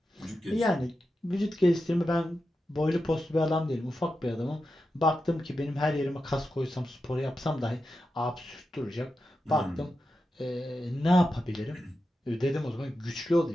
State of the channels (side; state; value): both; normal; correlation 0.90